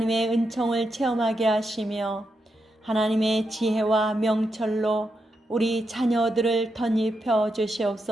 은총을 체험하게 하시며 하나님의 지혜와 명철로 우리 자녀들을 덧입혀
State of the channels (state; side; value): normal; both; correlation 0.85